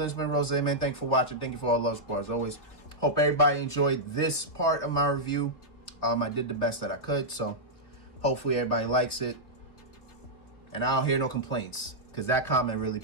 it's been Rose, man. Thank you for watching. Thank you for all the love support. As always, hope everybody enjoyed this part of my review. I did the best that I could. So, hopefully everybody likes it. And I don't hear no complaints. Because that comment really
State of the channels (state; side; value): late; right; 3.1 ms